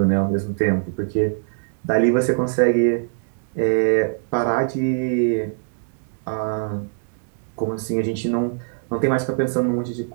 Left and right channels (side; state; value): left; silent; digital silence